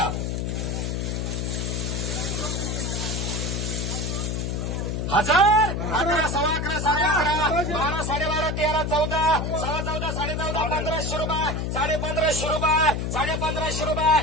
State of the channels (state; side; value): noise; left; hum, 1 dB below the sound